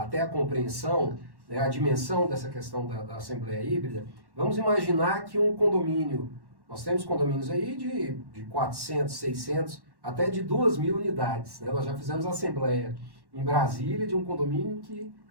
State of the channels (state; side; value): late; left; 1.1 ms